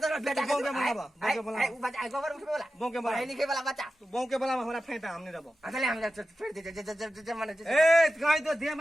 बेटा बो के बुलावा बो के बुलावा वो बच्चा गोबर उठे वाला बो के बुलावा पढ़े लिखे वाला बच्चा तू बो के बुलावा हमरा फायदा हमने रबो अगले हम फिर दे माने ए कहि तो दे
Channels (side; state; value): both; normal; correlation 0.93